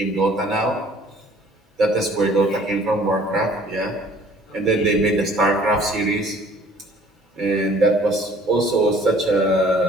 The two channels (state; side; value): normal; both; correlation 0.55